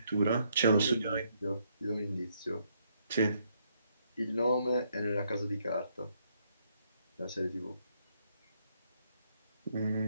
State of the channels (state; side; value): inverted; both; correlation -0.73